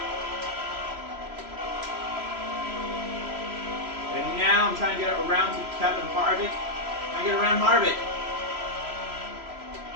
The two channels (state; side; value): late; left; 3.0 ms